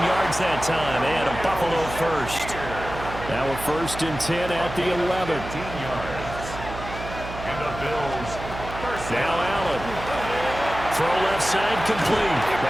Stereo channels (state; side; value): noise; right; hum, 10 dB below the sound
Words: that time, and a Buffalo first. Now a 1st and 10 at the 11. 15 yards. And the Bills. First Now Allen. Throw left side complete.